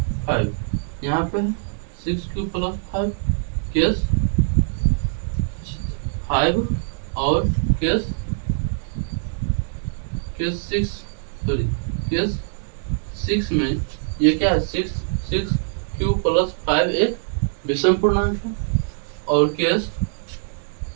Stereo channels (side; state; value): left; silent; 63 dB below the other